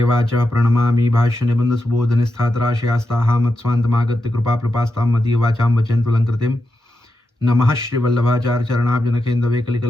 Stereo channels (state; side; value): normal; both; correlation 0.87